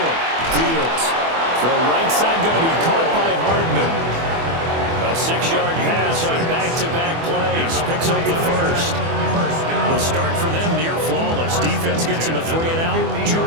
Fields. Throw right side going to be caught by Hardman. A 6-yard pass on back-to-back plays. Picks up the first. The start for them near flawless. Defense gets them a 3-and-out. 2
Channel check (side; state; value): left; late; 24 ms